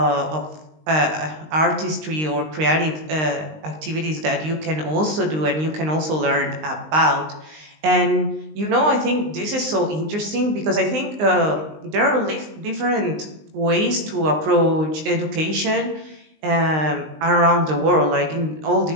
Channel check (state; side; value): late; left; 19 ms